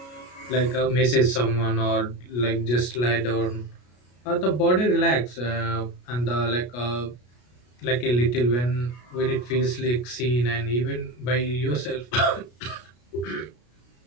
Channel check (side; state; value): right; late; 33 ms